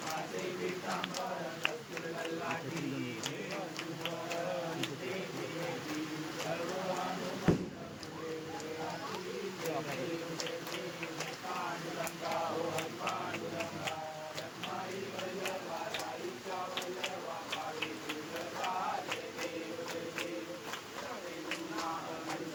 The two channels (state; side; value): identical; both; correlation 1.00